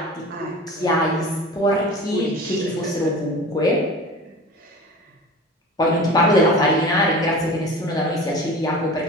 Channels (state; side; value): normal; both; correlation 0.37